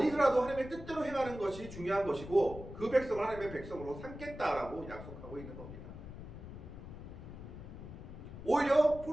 하나님의 뜻대로 행하는 것이 중요한 것이고 그 백성을 하나님의 백성으로 삼겠다라고 약속하고 있는 겁니다. 오히려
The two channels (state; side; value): noise; left; rumble, 12 dB below the sound